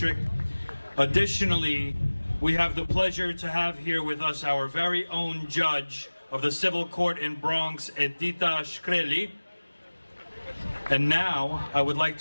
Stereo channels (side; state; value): both; inverted; correlation -1.00